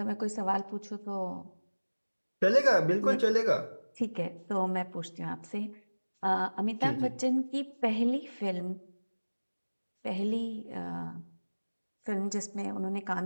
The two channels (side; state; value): both; inverted; correlation -1.00